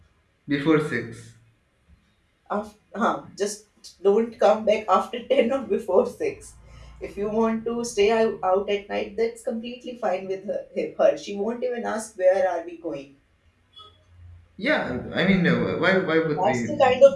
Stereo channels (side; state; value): both; identical; correlation 1.00